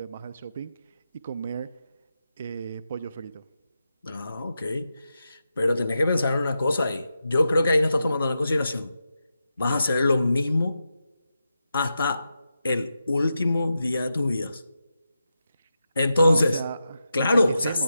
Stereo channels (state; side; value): inverted; both; correlation -0.88